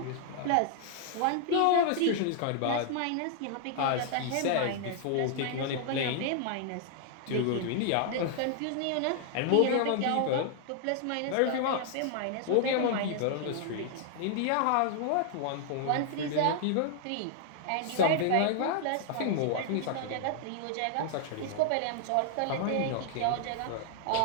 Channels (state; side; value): different; both; correlation 0.00